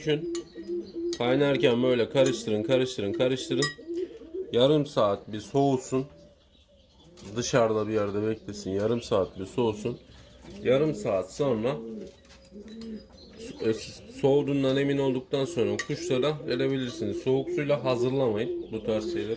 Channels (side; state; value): both; identical; correlation 1.00